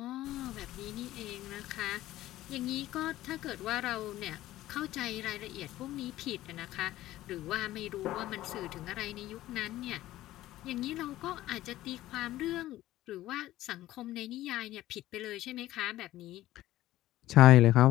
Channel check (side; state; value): right; quieter; 15.1 dB